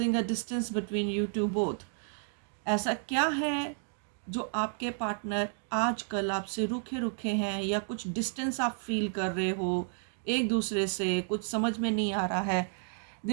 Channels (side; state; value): left; silent; 57 dB below the other